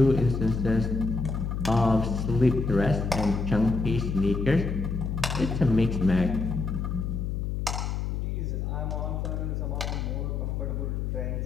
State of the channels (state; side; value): noise; left; hum, 2 dB below the sound